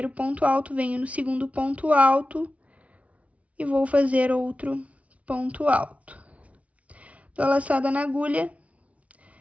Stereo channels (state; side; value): late; left; 0.066 ms